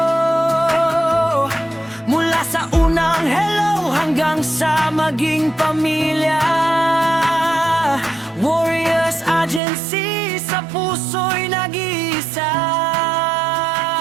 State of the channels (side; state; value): left; drops out; at 9.6 s